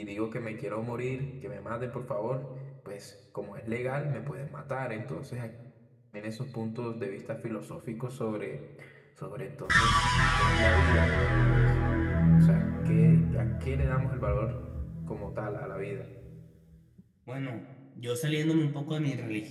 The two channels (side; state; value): both; identical; correlation 1.00